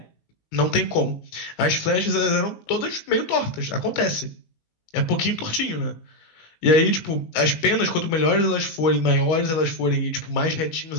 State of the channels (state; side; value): late; right; 19 ms